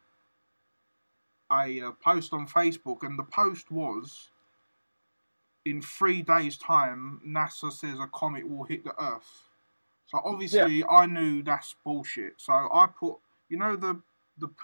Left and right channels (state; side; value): inverted; both; correlation -1.00